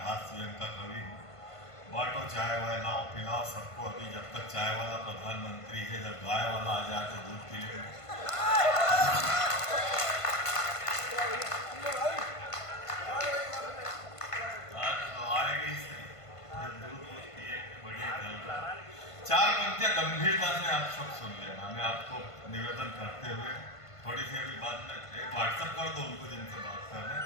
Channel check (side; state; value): right; late; 1.5 ms